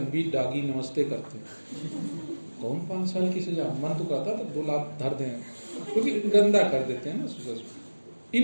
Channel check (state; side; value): inverted; both; correlation -1.00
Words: भी डागी नमस्ते करते हैं, कौन 5 साल की सजा, मन तो कहता था 2 लाख धर दें, क्योंकि गंदा कर देते हैं ना सुबह।